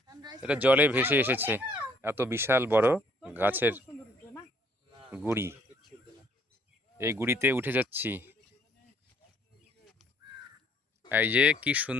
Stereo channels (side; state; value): both; normal; correlation 0.63